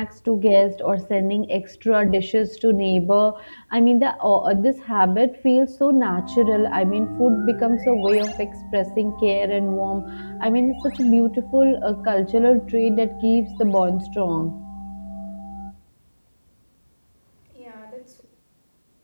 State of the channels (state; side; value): inverted; both; correlation -1.00